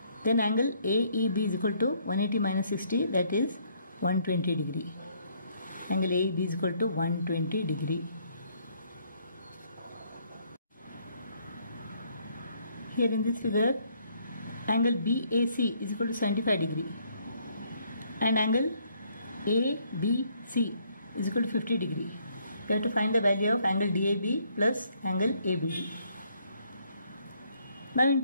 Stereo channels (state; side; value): inverted; both; correlation -0.68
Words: then angle AEB is equal to 180 minus 60, that is 120 degree. Angle AEB is equal to 120 degree. Here in this figure, angle BAC is equal to 75 degree and angle ABC is equal to 50 degree. We have to find the value of angle DAB plus angle ABD. Now in